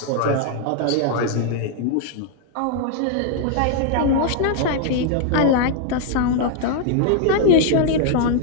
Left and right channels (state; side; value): different; both; correlation -0.01